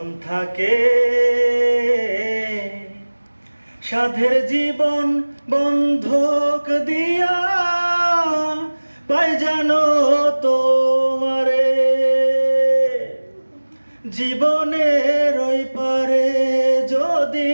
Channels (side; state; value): both; inverted; correlation -1.00